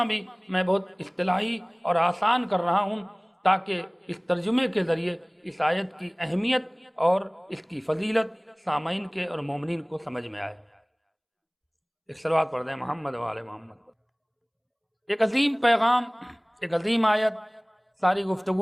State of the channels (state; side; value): identical; both; correlation 1.00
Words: بھی میں بہت اصطلاحی اور آسان کر رہا ہوں تاکہ اس ترجمے کے ذریعے اس آیت کی اہمیت اور اس کی فضیلت سامعین کے اور مومنین کو سمجھ میں آئے۔ ایک صلوات پڑھ دیں محمد و آل محمد۔ ایک عظیم پیغام، ایک عظیم آیت، ساری